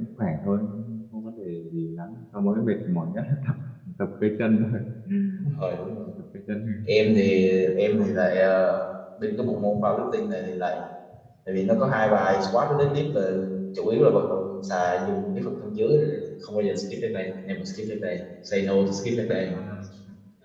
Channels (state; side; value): identical; both; correlation 1.00